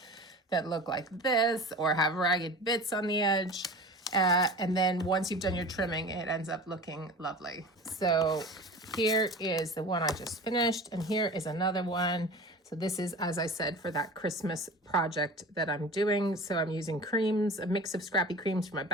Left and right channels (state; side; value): normal; both; correlation 0.36